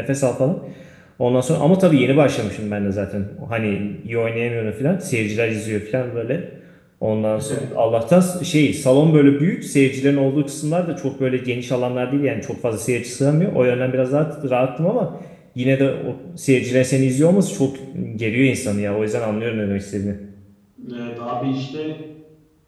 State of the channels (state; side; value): identical; both; correlation 1.00